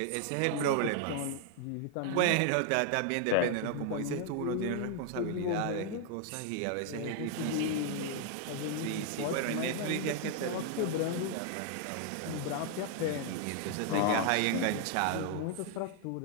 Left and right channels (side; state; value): both; different; correlation 0.00